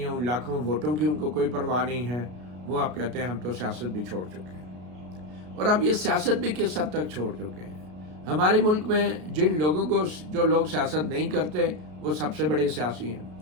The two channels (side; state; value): left; late; 33 ms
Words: ان لاکھوں ووٹوں کی ان کو کوئی پرواہ نہیں ہے۔ وہ اب کہتے ہیں ہم تو سیاست بھی چھوڑ چکے ہیں۔ اور اب یہ سیاست بھی کس حد تک چھوڑ چکے ہیں؟ ہمارے ملک میں جو لوگ سیاست نہیں کرتے وہ سب سے بڑے سیاسی ہیں۔